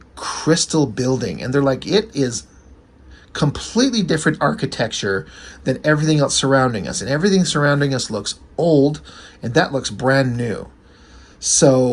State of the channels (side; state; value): both; identical; correlation 1.00